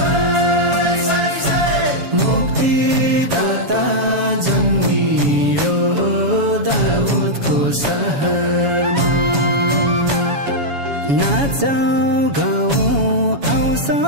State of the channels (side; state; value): left; late; 7.1 ms